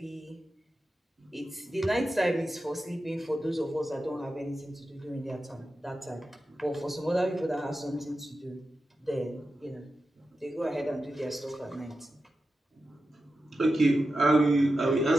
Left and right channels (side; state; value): both; normal; correlation 0.91